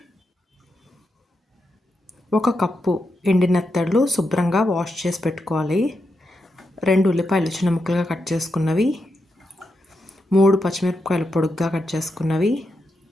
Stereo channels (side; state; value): both; normal; correlation 0.85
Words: 1 కప్పు ఎండి నెత్తళ్ళు శుభ్రంగా వాష్ చేసి పెట్టుకోవాలి, 2 ఉల్లిపాయలు చిన్న ముక్కలుగా కట్ చేసుకున్నవి, 3 పచ్చిమిరపకాయలు పొడుగ్గా కట్ చేసుకున్నవి,